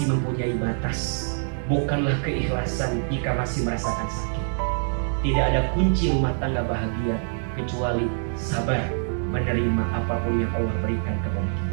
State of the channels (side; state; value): left; silent; digital silence